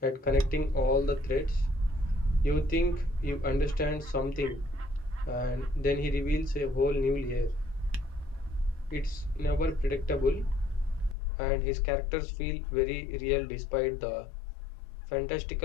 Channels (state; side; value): drops out; right; at 11.2 s